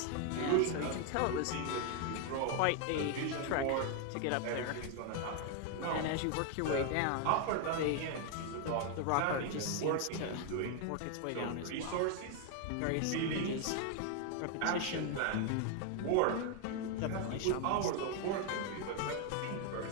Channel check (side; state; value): both; different; correlation 0.00